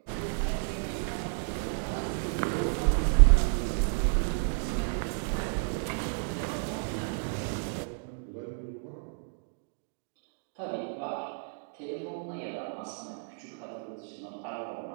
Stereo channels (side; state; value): left; silent; digital silence